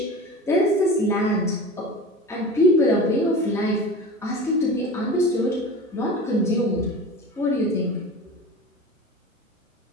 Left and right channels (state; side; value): normal; both; correlation 0.33